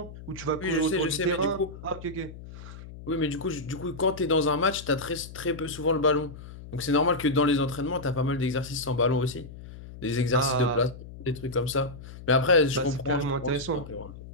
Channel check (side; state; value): left; noise; hum, 14 dB below the sound